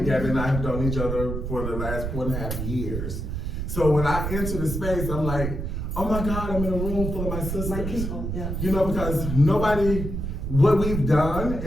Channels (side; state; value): right; noise; rumble, 3 dB below the sound